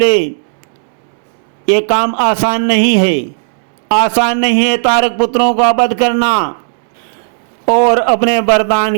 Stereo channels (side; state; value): left; silent; digital silence